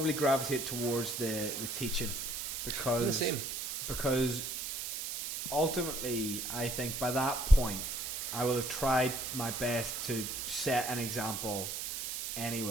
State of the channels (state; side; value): noise; right; hiss, 4 dB below the sound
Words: gravitate towards the teaching because The same. because ultimately I think by that point I will have tried my best to set an example